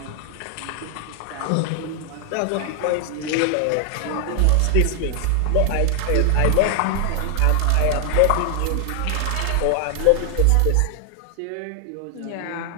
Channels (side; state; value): both; different; correlation 0.00